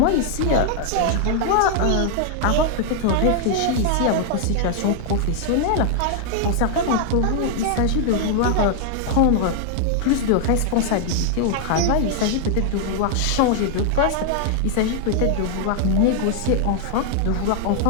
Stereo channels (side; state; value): both; different; correlation 0.00